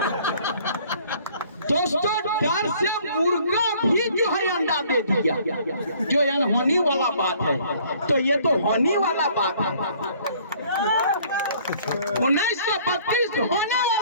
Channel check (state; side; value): inverted; both; correlation -0.57